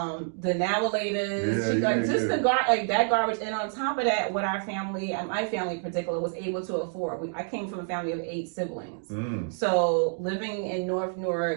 navilators, that garbage. And on top of that, what our family, and my family in particular, was able to afford. I came from a family of 8 siblings. So living in North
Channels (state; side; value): silent; left; 59 dB below the other